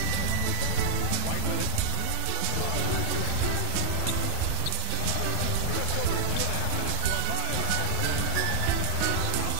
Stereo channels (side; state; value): both; different; correlation 0.00